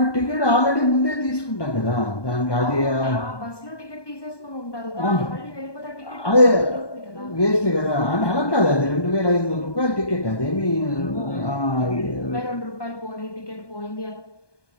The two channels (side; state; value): right; late; 1.2 ms